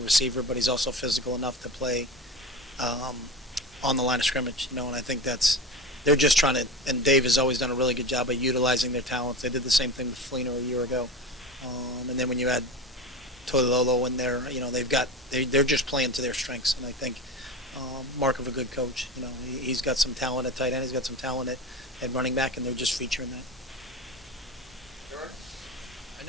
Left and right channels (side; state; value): both; normal; correlation 0.27